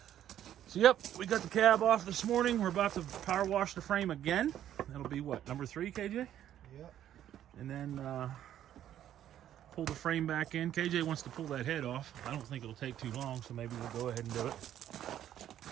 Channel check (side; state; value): left; quieter; 11.2 dB